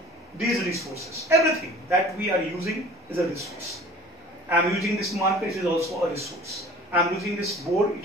these resources. Everything that we are using is a resource. I am using this marker, it is also a resource. I am using this board,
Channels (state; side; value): normal; both; correlation 0.45